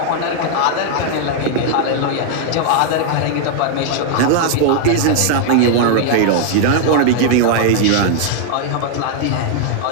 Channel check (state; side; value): different; both; correlation 0.00